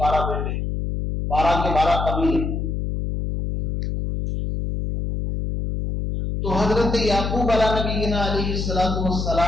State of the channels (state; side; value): noise; left; hum, 2 dB below the sound